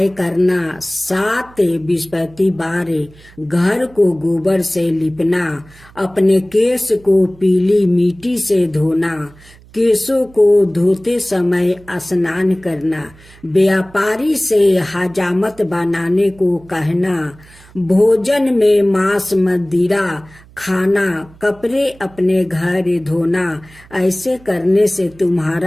करना। 7 बृहस्पतिवार घर को गोबर से लिपना। अपने केश को पीली मिट्टी से धोना। केशों को धोते समय स्नान करना। व्यापारी से हजामत बनाने को कहना। भोजन में मांस मदिरा खाना। कपड़े अपने घर धोना। ऐसे करने से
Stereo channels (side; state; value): right; noise; hum, 25 dB below the sound